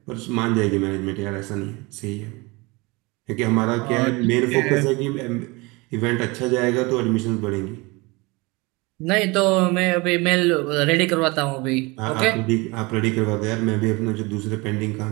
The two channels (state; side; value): quieter; left; 25.1 dB